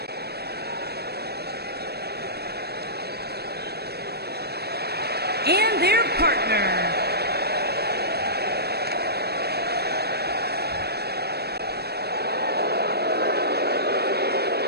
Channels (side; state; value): left; late; 0.47 ms